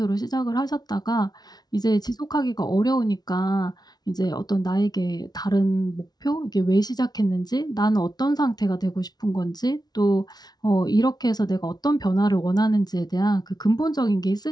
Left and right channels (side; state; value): right; late; 0.19 ms